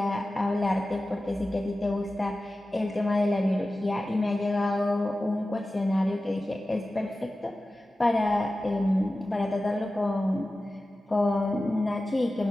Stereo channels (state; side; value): normal; both; correlation 0.95